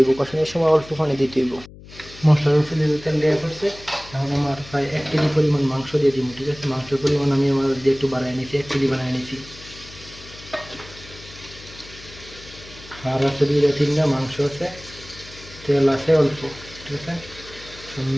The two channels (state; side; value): noise; left; hum, 18 dB below the sound